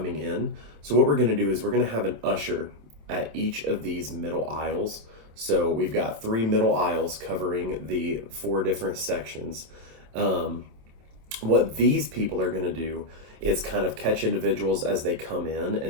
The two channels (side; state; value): left; late; 27 ms